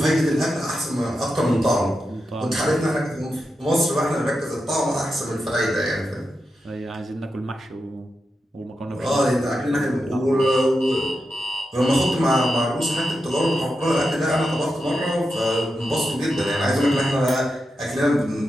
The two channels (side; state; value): both; normal; correlation 0.88